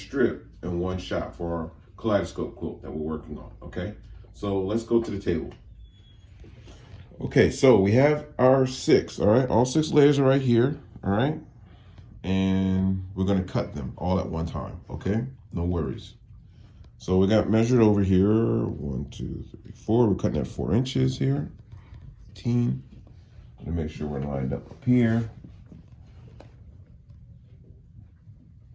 in one shot for our Kaleidoscope quilt that we're working on. Okay, so let's go to the table. Okay, so we have our 6, all right? All 6 layers are right here, all right? And we're gonna cut them all at one time, okay? No worries. So we got measured over here, 1, 2, 3, 4. We're cutting at 4 inches here. 15. To make sure we're lined up here.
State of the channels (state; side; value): identical; both; correlation 1.00